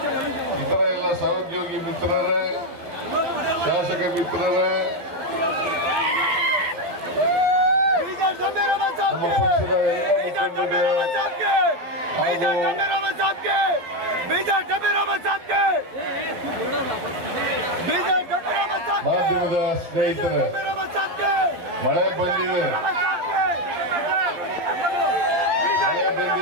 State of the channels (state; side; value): late; left; 12 ms